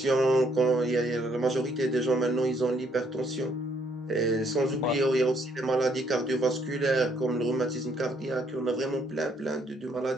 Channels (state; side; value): normal; both; correlation 0.68